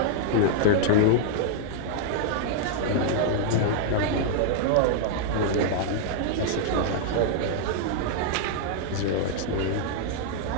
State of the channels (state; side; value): different; both; correlation -0.01